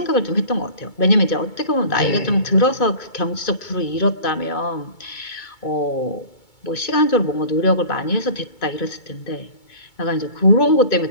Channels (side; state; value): right; late; 2.2 ms